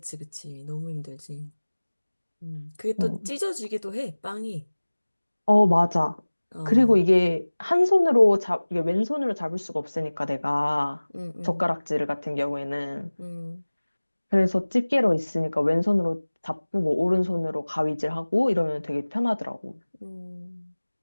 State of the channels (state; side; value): inverted; both; correlation -1.00